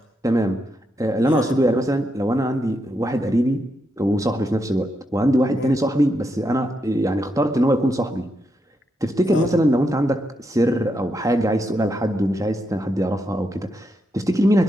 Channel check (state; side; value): normal; both; correlation 0.82